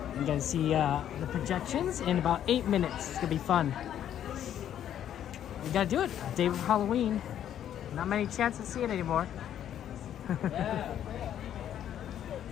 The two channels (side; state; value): right; quieter; 10.4 dB